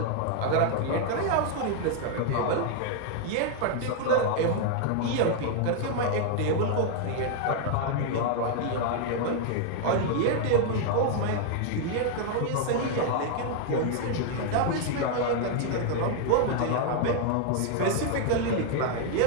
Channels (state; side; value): different; both; correlation 0.00